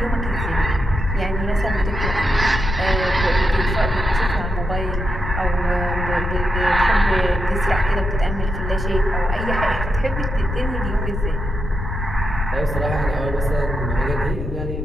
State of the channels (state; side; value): noise; left; rumble, 4 dB below the sound